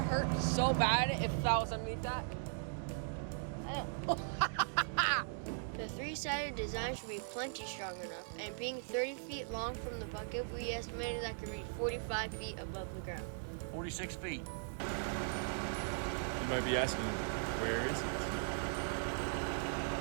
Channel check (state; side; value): silent; left; digital silence